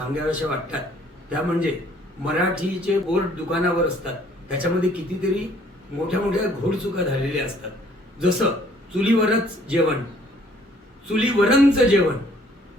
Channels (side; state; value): both; normal; correlation 0.60